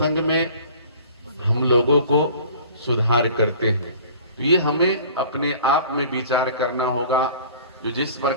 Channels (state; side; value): inverted; both; correlation -0.47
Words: में हम लोगों को सुधार करते हैं। तो ये हमें अपने आप में विचार करना होगा। जो जिस